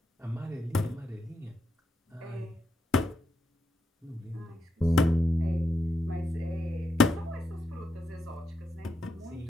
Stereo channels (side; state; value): both; normal; correlation 0.83